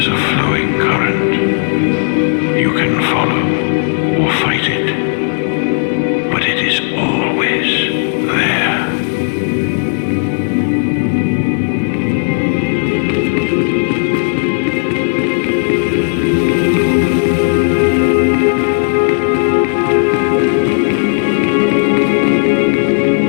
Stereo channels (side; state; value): right; silent; 68 dB below the other